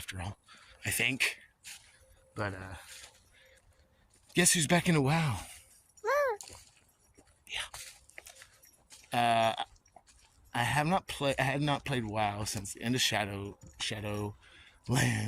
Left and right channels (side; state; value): both; identical; correlation 1.00